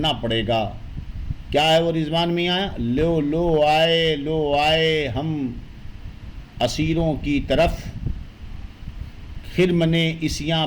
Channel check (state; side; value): identical; both; correlation 1.00